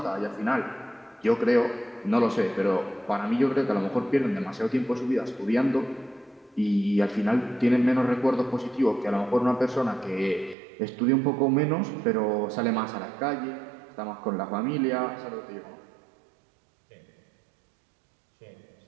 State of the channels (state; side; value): drops out; left; at 10.6 s